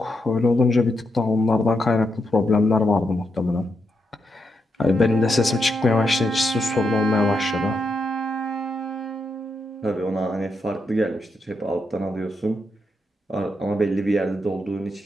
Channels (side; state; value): both; normal; correlation 0.83